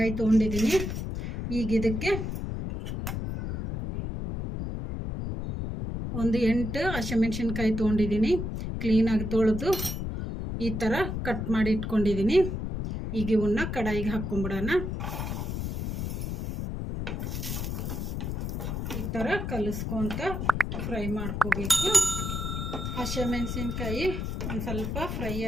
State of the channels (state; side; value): noise; left; rumble, 3 dB below the sound